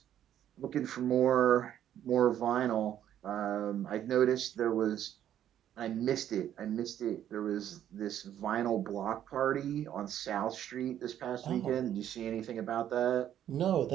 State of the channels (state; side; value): quieter; left; 10.8 dB